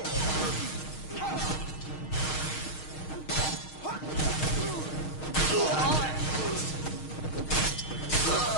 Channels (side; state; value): right; late; 6.4 ms